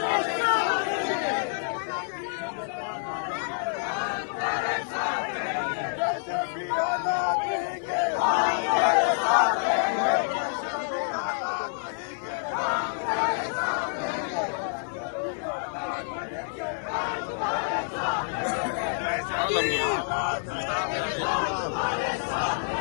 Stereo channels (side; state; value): right; silent; 57 dB below the other